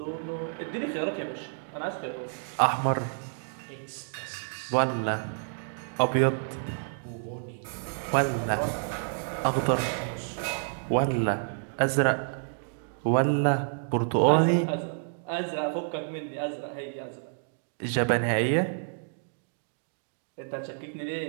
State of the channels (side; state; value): left; silent; digital silence